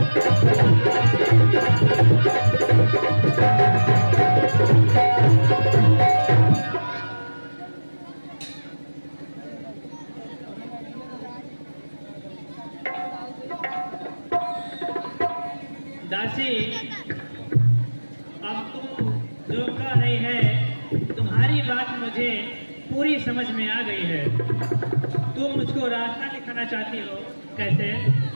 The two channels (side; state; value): both; inverted; correlation -1.00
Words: दासी, अब तुम जो कह रही है, तुम्हारी बात मुझे पूरी समझ में आ गई है। तुम मुझको रास्ता दिखाना चाहती हो, कैसे?